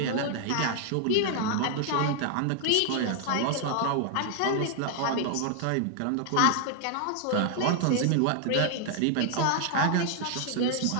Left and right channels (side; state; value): both; different; correlation 0.00